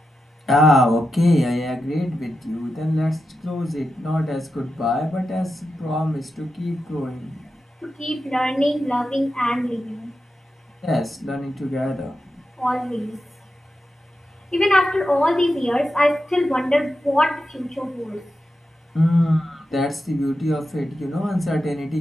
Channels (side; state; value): both; normal; correlation 0.89